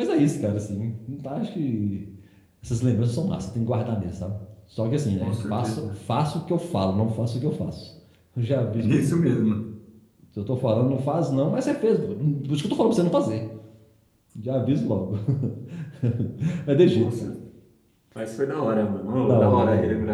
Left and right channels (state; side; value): identical; both; correlation 1.00